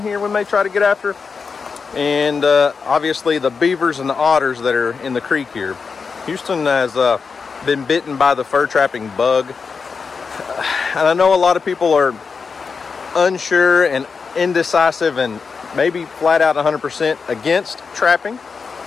here we may try to get after, and obviously the beavers and the otters that are in the creek here. Houston has been bitten by the fur trapping bug, and I know a lot of people are unsure and indecisive and maybe flat out 100% against trapping,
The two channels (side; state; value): right; quieter; 5.2 dB